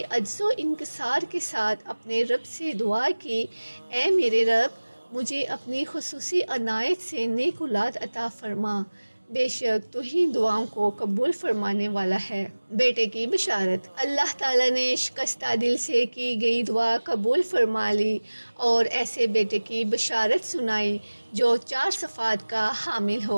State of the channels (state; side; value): inverted; both; correlation -1.00